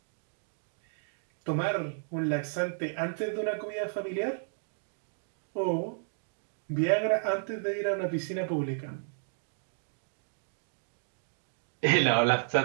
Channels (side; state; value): left; silent; digital silence